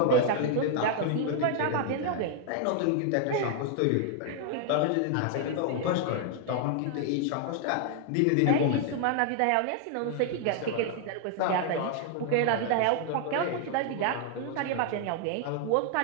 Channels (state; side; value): different; both; correlation 0.00